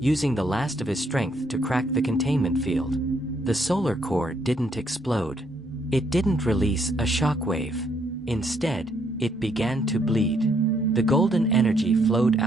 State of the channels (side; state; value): both; normal; correlation 0.71